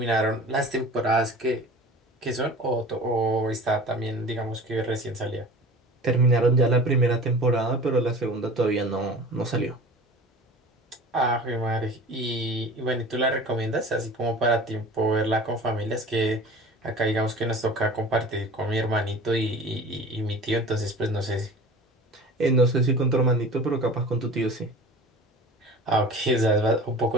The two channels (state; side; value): normal; both; correlation 0.40